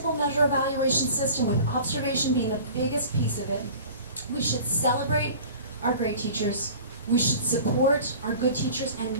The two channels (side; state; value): both; inverted; correlation -0.42